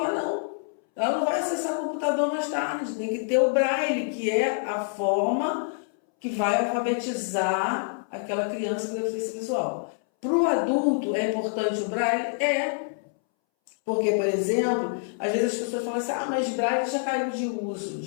não. Ela não vai acessar computador mais tarde. Tem que ter o Braille, que é a forma que vai alfabetizar aquela criança com deficiência visual. Para o adulto, é importante o Braille? Porque, por exemplo, às vezes as pessoas falam assim, mas Braille já caiu de uso,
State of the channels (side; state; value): right; silent; 61 dB below the other